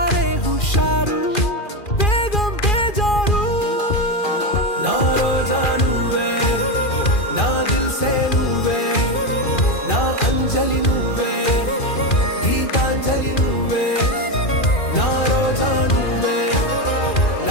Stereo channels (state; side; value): late; right; 2.4 ms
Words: హుషారు వేగం బేజారు నా రోజా నువ్వే నా దిల్సే నువ్వే నా అంజలి నువ్వే గీతాంజలి నువ్వే నా రోజా నువ్వే